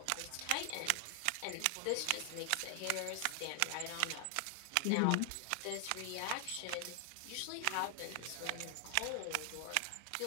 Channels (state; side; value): different; both; correlation 0.00